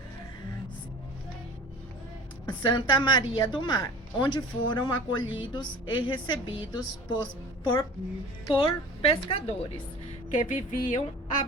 Santa Maria do Mar, onde foram acolhidos e recebidos por pescadores que viviam a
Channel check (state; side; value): normal; both; correlation 0.41